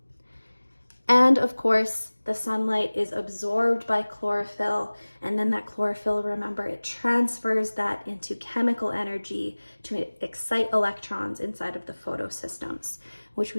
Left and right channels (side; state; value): both; inverted; correlation -1.00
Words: And of course, the sunlight is absorbed by chlorophyll, and then that chlorophyll, remember, it transfers that into chemical energy to excite electrons inside of the photosystems, which